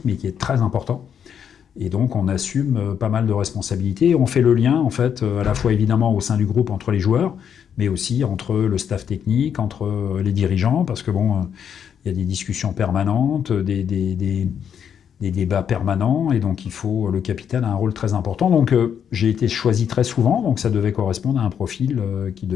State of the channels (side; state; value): right; quieter; 8.1 dB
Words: mais qui est très important. Et donc on assume pas mal de responsabilités. On fait le lien en fait, à la fois évidemment au sein du groupe entre les joueurs, mais aussi entre le staff technique, entre les dirigeants, parce que bon, il y a des discussions permanentes, des débats permanents, et donc le capitaine a un rôle très important. Donc j'ai été choisi très souvent, donc ça devait correspondre à un profil qui